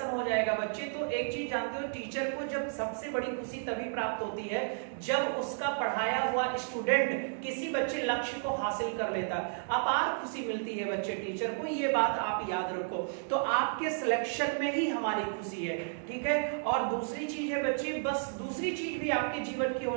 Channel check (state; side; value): silent; left; digital silence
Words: हो जाएगा बच्चे, तो एक चीज जानते हो, टीचर को जब सबसे बड़ी खुशी तभी प्राप्त होती है जब उसका पढ़ाया हुआ स्टूडेंट किसी बच्चे लक्ष्य को हासिल कर लेता, अपार खुशी मिलती है बच्चे टीचर को, ये बात आप याद रखो। तो आपके सिलेक्शन में ही हमारी खुशी है, ठीक है। और दूसरी चीज है बच्चे, बस दूसरी चीज भी आपके जीवन की